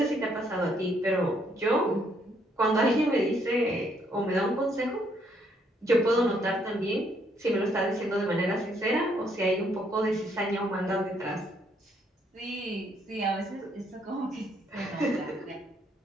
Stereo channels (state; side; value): normal; both; correlation 0.70